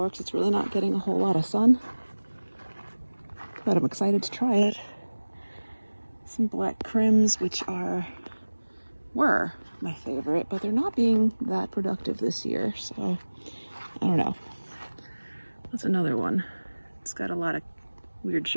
because it's really not getting a whole lot of sun. But I'm excited to try it. Some black crims, which were my favorite, but they're not being that productive this year, so I don't know. That's another one. It's got a lot of weird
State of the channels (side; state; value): both; inverted; correlation -1.00